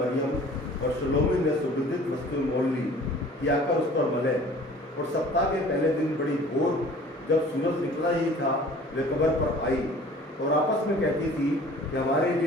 और सलोमी ने सुगंधित वस्तु मोल ली कि आकर उस पर मले। और सप्ताह के पहले दिन बड़ी भोर जब सूरज निकला ही था वे कब्र पर आई और आपस में कहती थी कि हमारे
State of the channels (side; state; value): both; normal; correlation 0.48